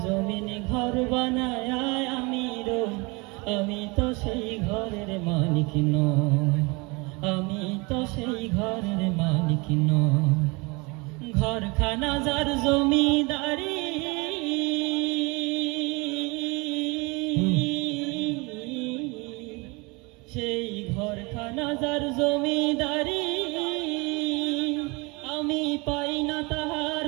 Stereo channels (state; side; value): quieter; left; 27.2 dB